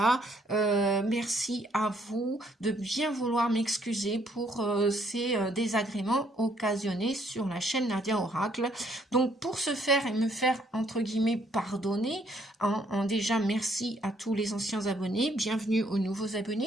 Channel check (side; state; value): both; normal; correlation 0.67